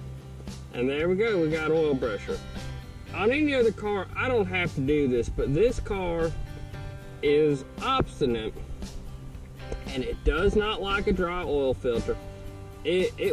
And there we go, we got oil pressure. On any other car, I don't have to do this, but this car is obstinate and it does not like a dry oil filter.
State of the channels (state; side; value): identical; both; correlation 1.00